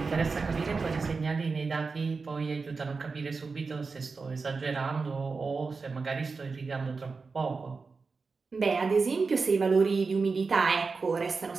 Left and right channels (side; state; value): left; quieter; 4.5 dB